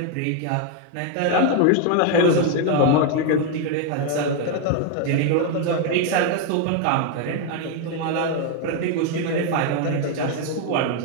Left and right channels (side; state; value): both; different; correlation 0.01